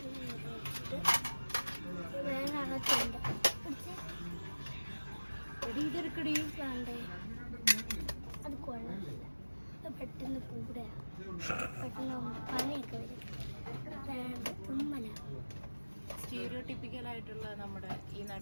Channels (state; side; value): inverted; both; correlation -1.00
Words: അത് കൊള്ളാം. പെട്ടെന്ന് കൂടെ പെട്ടെന്ന് പനിയൊക്കെ വരും. സ്റ്റീരിയോടിപ്പിക്കൽ ആയിട്ടുള്ള നമ്മുടെ ഈ